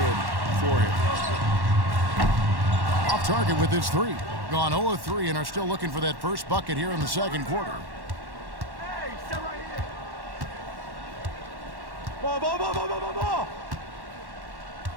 for him. Off target with his 3. Gone 0 of 3 and are still looking for that first bucket here in the second quarter.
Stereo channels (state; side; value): late; left; 1.1 ms